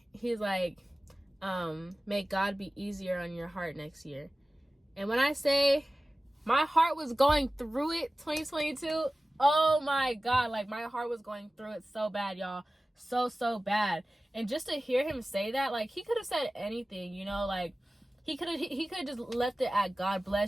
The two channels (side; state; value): both; normal; correlation 0.97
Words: may God be easier on your heart next year. And when I say my heart was going through it 2022, oh my God, like my heart was going through it so bad, y'all. So bad. And just to hear him say that, like he could have said anything, you know, like he could have just left it at God